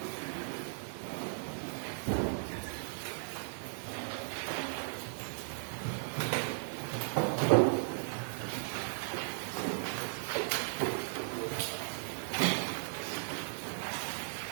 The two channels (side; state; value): left; silent; digital silence